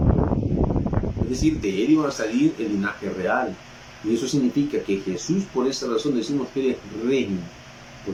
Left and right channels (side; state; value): both; identical; correlation 1.00